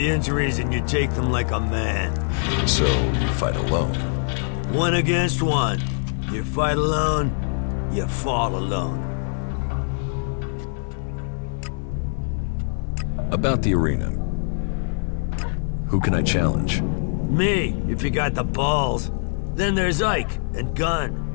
injuries and you take them like a man. So, you fight alone? 1 against 1. You fight alone, you fall alone. About the arena. Who can I challenge? Me, if you got the balls. Then there's Ike and Gunn.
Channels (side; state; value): right; silent; 63 dB below the other